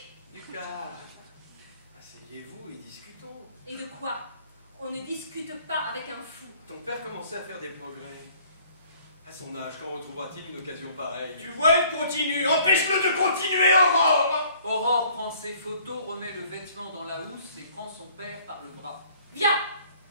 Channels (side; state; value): both; inverted; correlation -0.56